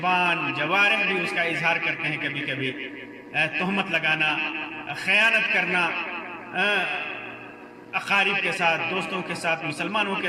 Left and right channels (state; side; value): identical; both; correlation 1.00